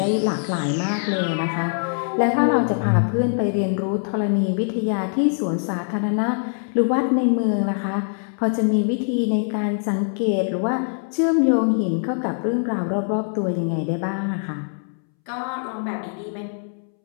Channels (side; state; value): right; silent; 64 dB below the other